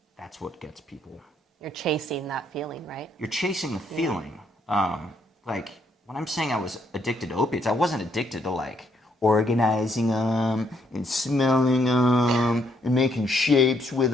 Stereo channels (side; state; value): both; normal; correlation 0.72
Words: what gets people. You're chasing that feeling, right? You're chasing the feeling. Like when I'm saying I was addicted to opiates, I wasn't addicted to like organizing them and smelling them and making shapes with